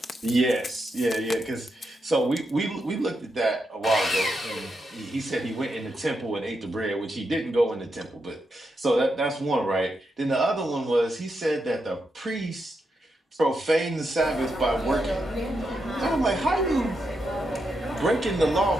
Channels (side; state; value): both; normal; correlation 0.84